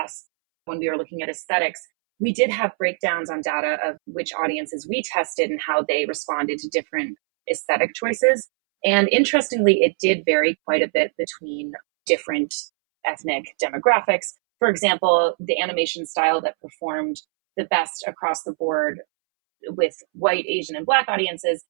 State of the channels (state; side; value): silent; left; 64 dB below the other